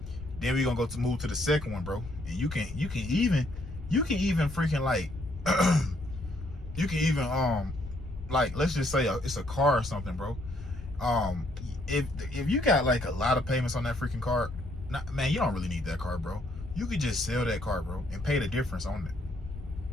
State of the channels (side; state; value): left; noise; rumble, 12 dB below the sound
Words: Then we're gonna move to the second one, bro. And you can even freaking like you can even like, let's just say it's a car or something, bro. If you got like a lot of payments on that freaking car, man, you don't really need that car, bro. You could just sell that car, bro, and pay the difference on it.